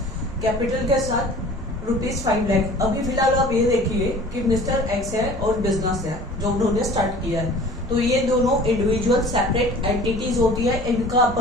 कैपिटल के साथ ₹5 लाख। अभी फिलहाल आप ये देखिए कि मिस्टर एक्स है और बिजनेस है जो उन्होंने स्टार्ट किया है, तो ये दोनों इंडिविजुअल सेपरेट एंटिटीज होती है, इनका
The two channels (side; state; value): both; normal; correlation 0.45